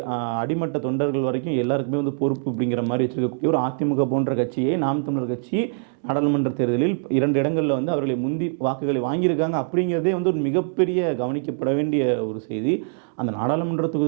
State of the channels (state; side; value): silent; left; 63 dB below the other